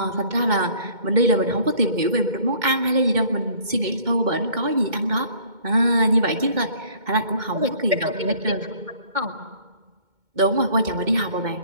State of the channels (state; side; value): late; left; 2.2 ms